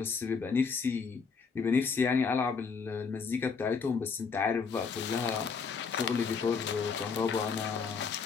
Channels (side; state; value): right; quieter; 5.4 dB